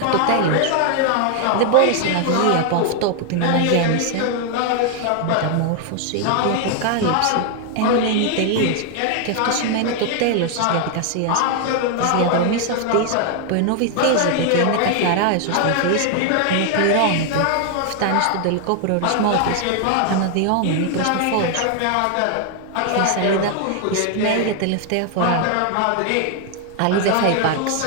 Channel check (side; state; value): both; different; correlation 0.00